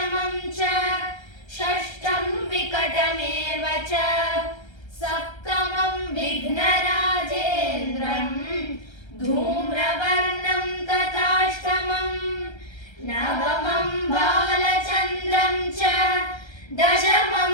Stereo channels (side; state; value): right; late; 1.3 ms